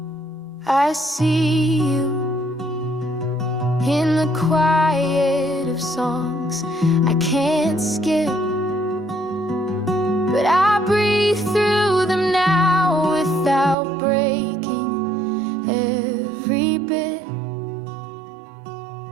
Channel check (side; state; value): left; drops out; at 13.8 s